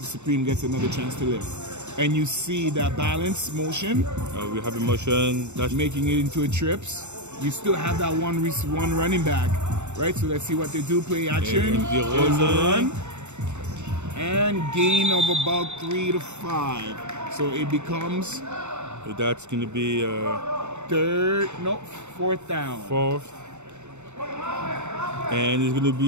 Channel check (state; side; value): late; left; 0.83 ms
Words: Supreme gets another chance to live. And you see that balance motion. We have a motion that's making it into a trips. You still have that one running back, right? So let's see what they do. Play action. There's a run. And gain of about 3 to 5. So it becomes. So that's going to be 4th down. 4th. And it's going to